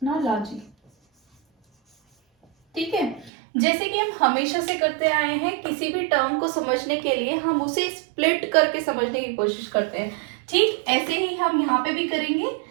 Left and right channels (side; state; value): left; drops out; at 3.3 s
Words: ठीक है, जैसे कि हम हमेशा से करते आए हैं, किसी भी टर्म को समझने के लिए हम उसे स्प्लिट करके समझने की कोशिश करते हैं। ठीक ऐसे ही हम यहाँ पे भी करेंगे,